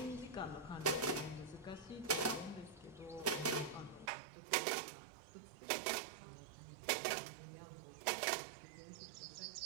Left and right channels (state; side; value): drops out; left; at 4.1 s